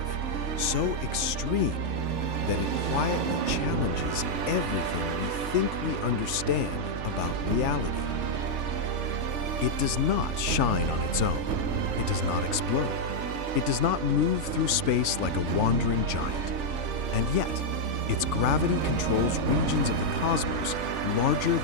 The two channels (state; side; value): late; left; 3.4 ms